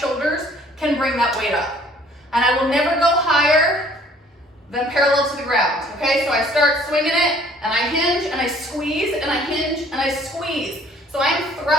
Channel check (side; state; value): both; normal; correlation 0.57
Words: can bring that weight up. And I will never go higher than parallel to the ground, okay? So I start swinging it, and I hinge, and I squeeze, and I hinge, and I squeeze. So I'm